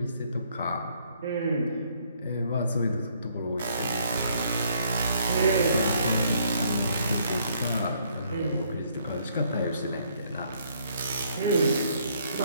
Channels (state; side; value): inverted; both; correlation -0.67